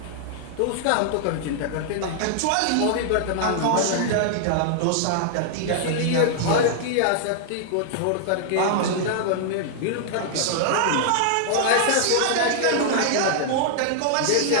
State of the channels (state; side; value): different; both; correlation -0.01